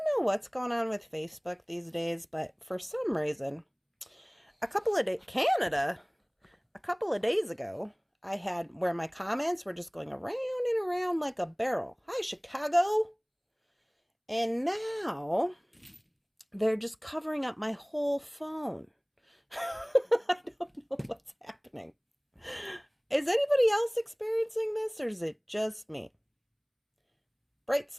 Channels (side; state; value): both; identical; correlation 1.00